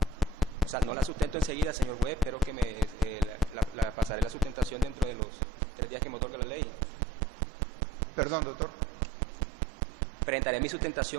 O sea, no la sustento enseguida, señor juez, pero que pasaré la sustentación dentro de los 3 días que me otorga la ley. Perdón, doctor. Presentaré mi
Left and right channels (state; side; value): drops out; left; at 5.2 s